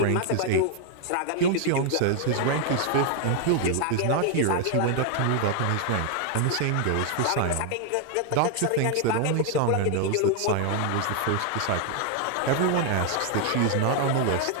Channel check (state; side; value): different; both; correlation 0.00